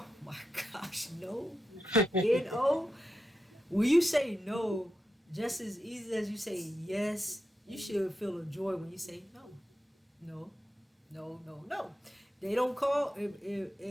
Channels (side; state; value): both; normal; correlation 0.88